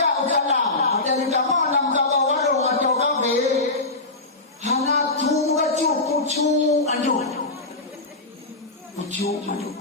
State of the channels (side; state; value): right; quieter; 3.0 dB